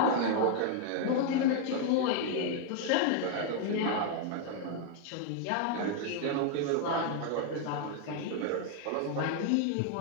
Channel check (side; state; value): both; different; correlation 0.00